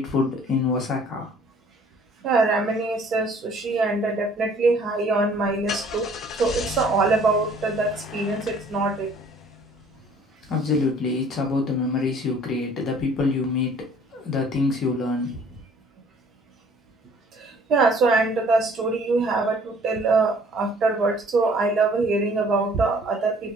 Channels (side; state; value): both; normal; correlation 0.55